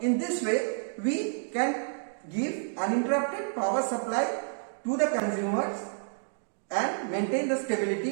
in this way we can give uninterrupted power supply to the consumers and maintain the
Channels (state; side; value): silent; left; digital silence